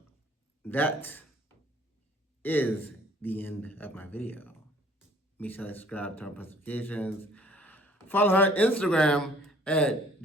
that is the end of my video. Make sure to subscribe, turn on notifications. Follow her on Instagram at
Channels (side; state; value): both; normal; correlation 0.55